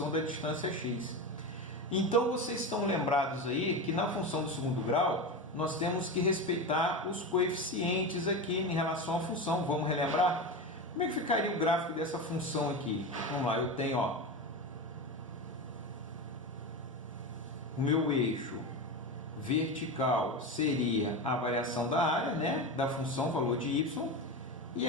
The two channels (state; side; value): normal; both; correlation 0.21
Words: da distância x. Então, vocês estão lembrados aí que na função do segundo grau, nós temos que respeitar os coeficientes aqui em relação à função. Vamos relembrar? Como é que ficaria o gráfico dessa função aqui? Vamos lá, eu tenho, ó, o meu eixo vertical seria a variação da área, né, da função valor de y, e